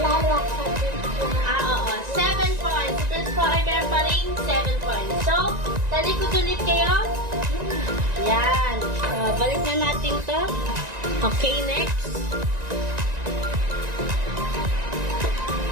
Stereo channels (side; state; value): left; late; 1.9 ms